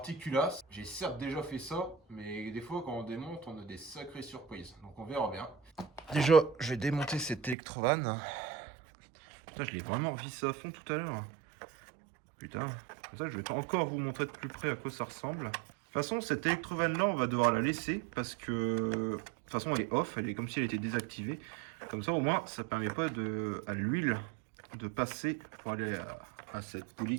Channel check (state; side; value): drops out; left; at 7.6 s